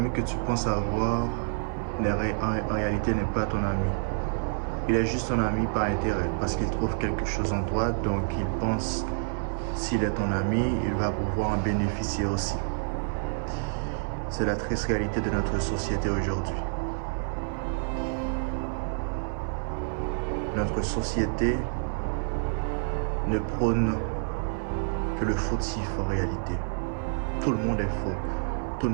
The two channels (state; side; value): silent; left; 57 dB below the other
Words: que tu penses avoir, en réalité, n'est pas ton ami. Il est juste ton ami par intérêt, parce qu'il trouve quelque chose en toi, donc il pense, s'il est ton ami, il va pouvoir en bénéficier aussi. C'est la triste réalité de notre société aujourd'hui. Notre société ne prône que le fautif en réalité. Tout le monde est faux. Tout